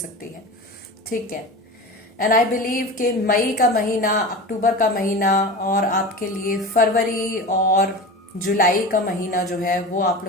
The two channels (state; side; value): normal; both; correlation 0.30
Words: है, ठीक है। एंड आई बिलीव कि मई का महीना, अक्टूबर का महीना और आपके लिए फरवरी और जुलाई का महीना जो है वो आप